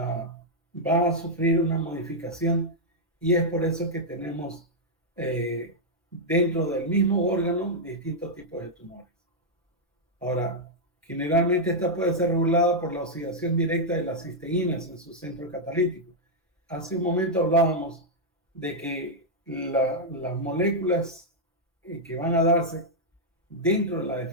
a sufrir una modificación y es por eso que tenemos dentro del mismo órgano distintos tipos de tumores. Ahora, generalmente esta puede ser regulada por la oxidación directa de las cisteínas en su centro catalítico. Hace un momento hablábamos de que las moléculas que van a darse dentro de la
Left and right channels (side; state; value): both; normal; correlation -0.04